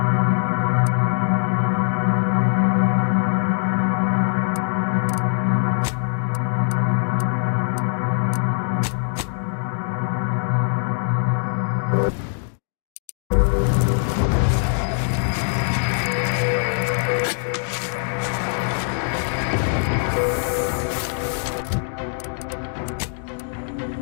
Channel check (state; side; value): silent; right; digital silence